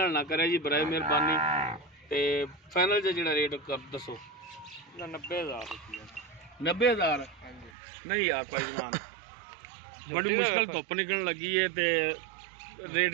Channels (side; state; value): left; drops out; at 7.7 s